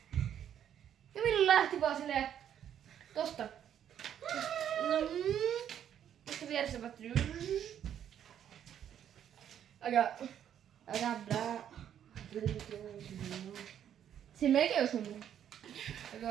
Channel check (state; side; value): quieter; left; 9.7 dB